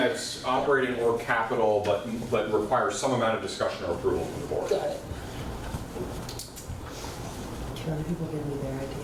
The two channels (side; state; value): both; identical; correlation 1.00